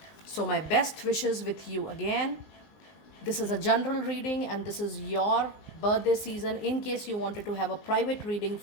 So, my best wishes with you again. This is a general reading and this is your birthday season. In case you wanted to have a private reading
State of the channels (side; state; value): right; late; 19 ms